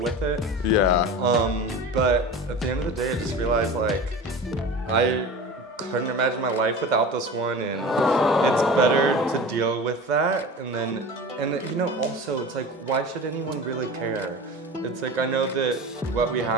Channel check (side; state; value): both; normal; correlation 0.33